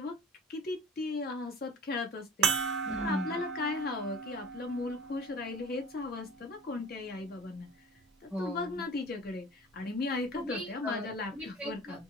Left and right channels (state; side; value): normal; both; correlation 0.41